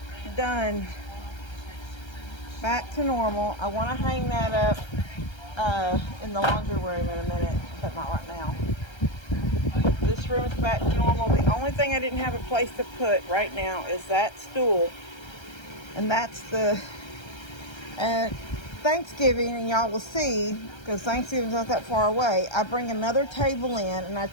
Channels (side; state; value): right; late; 1.3 ms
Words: Done. Back to normal. I want to hang that up in the laundry room in a minute, but not right now. This room's back to normal. The only thing I didn't have a place to put right now is that stool. And that's the Thanksgiving, and y'all will see, because Thanksgiving's not that far away, I bring another table in and I